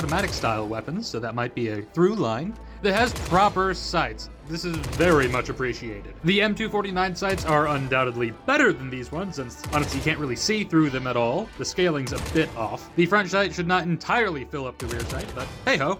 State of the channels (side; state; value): both; identical; correlation 1.00